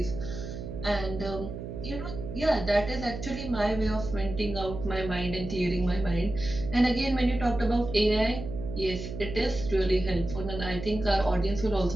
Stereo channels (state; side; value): noise; right; hum, 8 dB below the sound